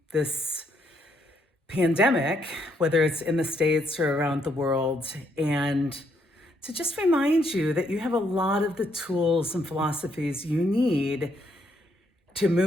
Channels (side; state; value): both; normal; correlation 0.73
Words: this pandemic, whether it's in the States or around the world, and to just remind you that you have a lot of the tools and philosophies you need to